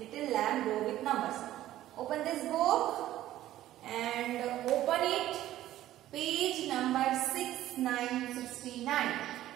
Lamb Grow with Numbers. Open this book and open it. Page number 6969.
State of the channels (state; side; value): quieter; left; 13.8 dB